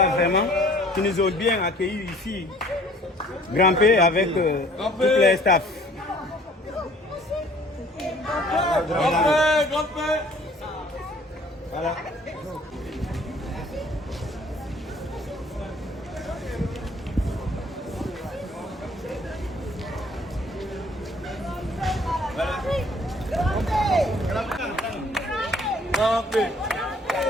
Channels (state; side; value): normal; both; correlation 0.55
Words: vraiment, qui nous ont bien accueillis ici. Grand-P avec tous les staffs. Voilà.